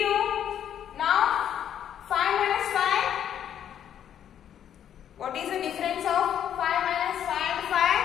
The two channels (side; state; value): right; quieter; 9.7 dB